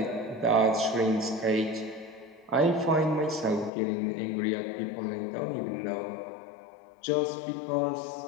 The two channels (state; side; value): drops out; right; at 3.7 s